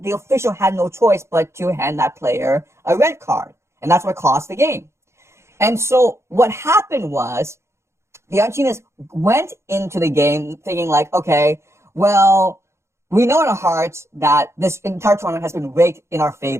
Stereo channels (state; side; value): late; left; 0.13 ms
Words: the official had no choice but to hand that player a red card. And that's what cost the game. And so what happened was the Argentinians went into the game thinking like, okay, well, we know in our hearts that this entire tournament has been rigged in our